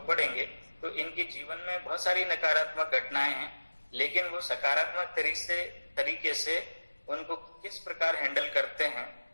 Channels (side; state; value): both; inverted; correlation -1.00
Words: पढ़ेंगे तो इनके जीवन में बहुत सारी नकारात्मक घटनाएं हैं, लेकिन वो सकारात्मक तरीके से उनको किस प्रकार हैंडल करते हैं